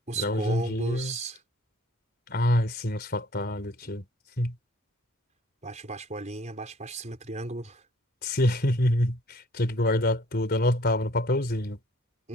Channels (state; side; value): normal; both; correlation 0.57